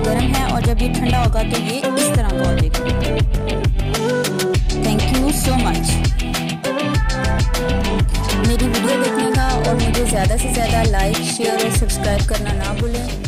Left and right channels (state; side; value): identical; both; correlation 1.00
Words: है और जब ये ठंडा होगा तो ये इस तरह का हो जाएगा। थैंक यू सो मच मेरी वीडियो देखने का, और मुझे ज़्यादा से ज़्यादा लाइक, शेयर और सब्सक्राइब करना ना भूलें।